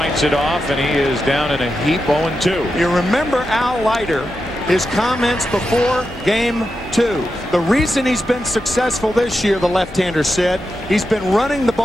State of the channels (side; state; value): both; normal; correlation 0.89